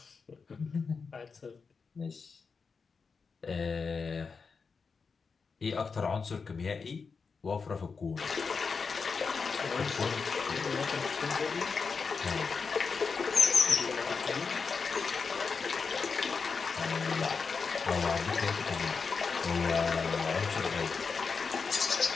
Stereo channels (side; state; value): right; quieter; 5.1 dB